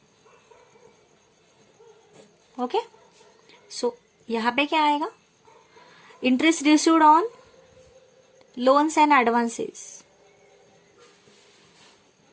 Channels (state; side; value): identical; both; correlation 1.00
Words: ओके, सो यहाँ पे क्या आएगा? Interest received on loans and advances.